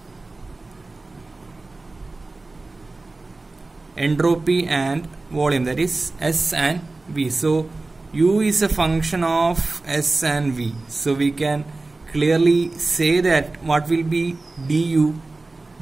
entropy and volume, that is S and V. So U is a function of S and V. So we can clearly say that what will be du?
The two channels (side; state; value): left; quieter; 3.3 dB